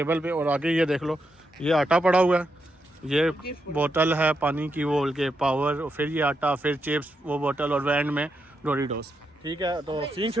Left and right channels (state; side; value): normal; both; correlation 0.83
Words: पे, और आगे ये देख लो, ये आटा पड़ा हुआ है, ये बोतल है पानी की, वो के पावर, फिर ये आटा, फिर चिप्स, वो बोतल, और एंड में डोरिटोस। ठीक है, तो सीन